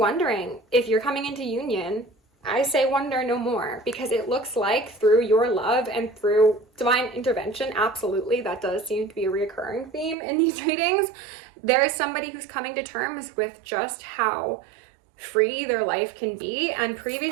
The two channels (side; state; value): left; drops out; at 10.2 s